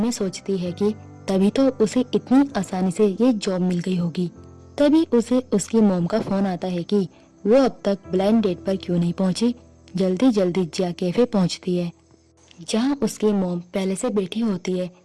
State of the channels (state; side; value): identical; both; correlation 1.00